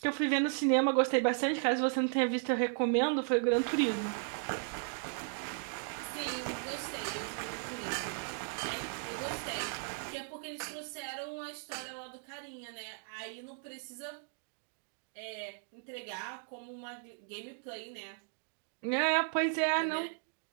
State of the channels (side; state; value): left; silent; 54 dB below the other